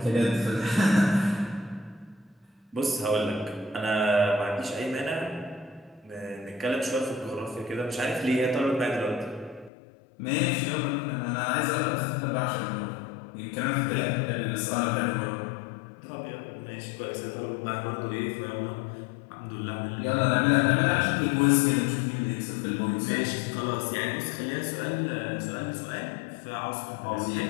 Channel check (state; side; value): drops out; right; at 9.7 s